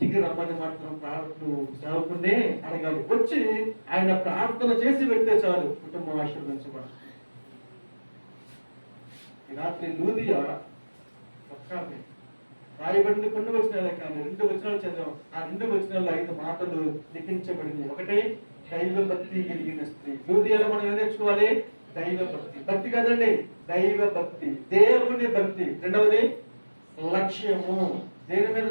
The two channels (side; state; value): both; inverted; correlation -1.00